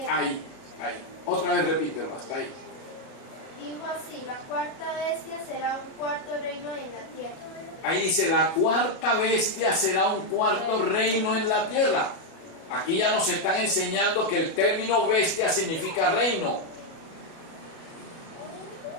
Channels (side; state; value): right; late; 37 ms